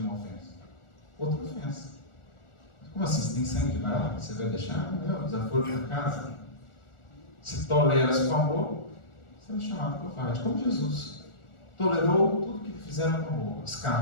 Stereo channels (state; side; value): late; right; 1.4 ms